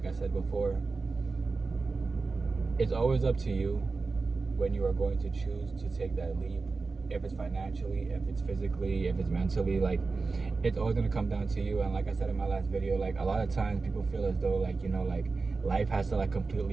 I said before, it's always up to you when you are going to choose to take that leap. If it's financially, if it's physically, if it's mentally, it's always gonna come down to you. And like I said in my last video, a lot of times people feel as though life has to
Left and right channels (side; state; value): left; quieter; 4.1 dB